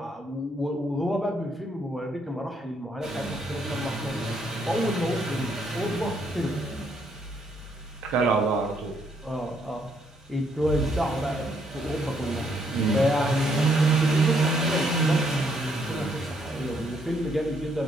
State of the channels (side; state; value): both; normal; correlation 0.72